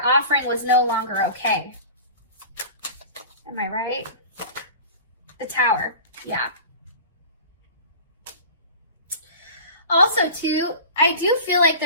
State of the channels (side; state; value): both; inverted; correlation -0.37